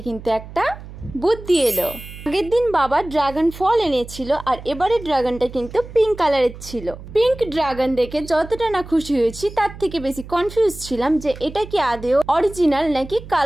কিন্তু একটা বুদ্ধি এলো। আগের দিন বাবা ড্রাগন ফল এনেছিল, আর এবারে ড্রাগনটা কিন্তু পিঙ্ক কালারের ছিল। পিঙ্ক ড্রাগন দেখে যতটা না খুশি হয়েছি তার থেকে বেশি কনফিউজ ছিলাম যে এটা কি আদেও অরিজিনাল নাকি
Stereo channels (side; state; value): right; noise; hum, 15 dB below the sound